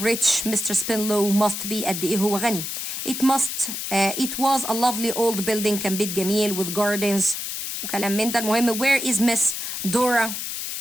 Mr. Spinlow must be قد ايه هو غني. It was a lovely old building كان بيت جميل with gardens وكلام من ده. المهم where is Miss Dora.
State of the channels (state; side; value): noise; left; hiss, 5 dB below the sound